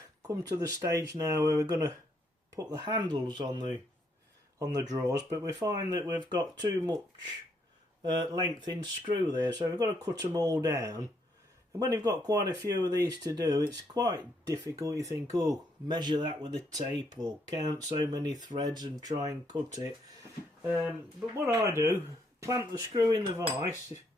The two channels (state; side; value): normal; both; correlation 0.73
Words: come to the stage now where we're going to put the handles on the drawers, but we find that we've got too much length in screw there, so we've got to cut them all down. And when you've got quite a few of these to do, it's quite difficult. You think, oh, measure that with a tape or count so many threads and try and cut it. But what I do, clamp the screw in the vise,